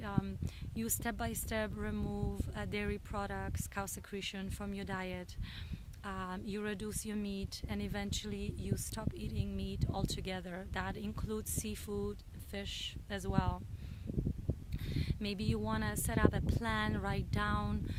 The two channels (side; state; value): both; identical; correlation 1.00